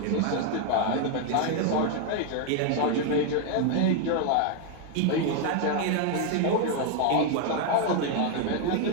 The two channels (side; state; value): both; different; correlation 0.00